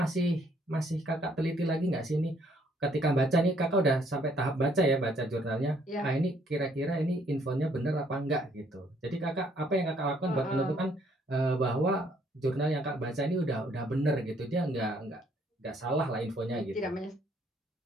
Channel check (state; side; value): normal; both; correlation 0.66